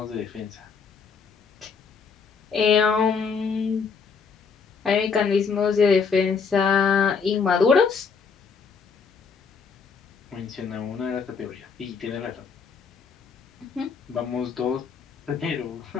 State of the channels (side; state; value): right; quieter; 5.6 dB